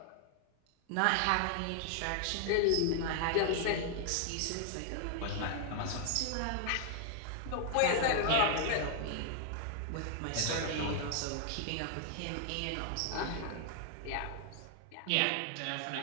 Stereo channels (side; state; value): both; different; correlation 0.00